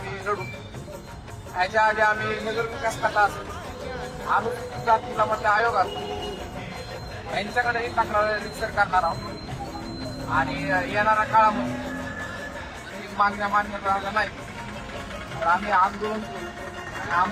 लढू. ह्याच्या आधी आम्ही नगर विकास खाता असेल, अनुसूचित जाती जमाती आयोग असेल, यांच्याकडेही तक्रार रिसर करणार आहोत. आणि येणाऱ्या काळामध्ये मागण्या मान्य झाल्या नाही तर आम्ही आंदोलन करू आणि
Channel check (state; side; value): identical; both; correlation 1.00